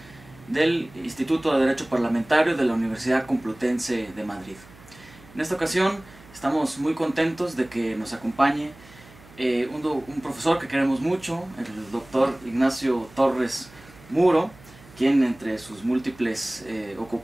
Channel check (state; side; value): noise; right; hum, 23 dB below the sound